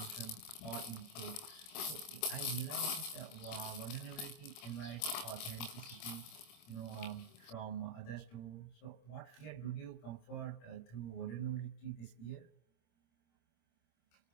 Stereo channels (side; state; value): right; late; 26 ms